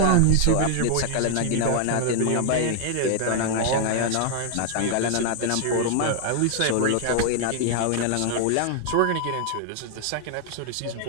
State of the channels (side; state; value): both; different; correlation 0.00